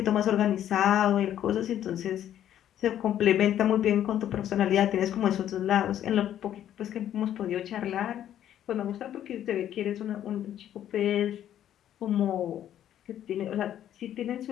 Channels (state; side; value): quieter; right; 11.0 dB